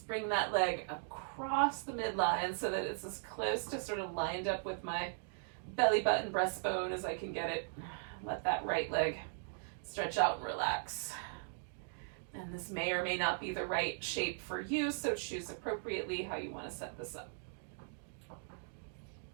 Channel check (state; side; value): silent; left; digital silence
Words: bring that leg across the midline so that it's as close to sort of lined up with my belly button breastbone as I can get it. Let that right leg stretch out and relax. And this may or may not be the right shape for you, so choose appropriately how you want to set this up.